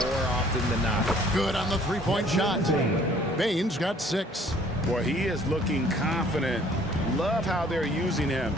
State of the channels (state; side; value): normal; both; correlation 0.57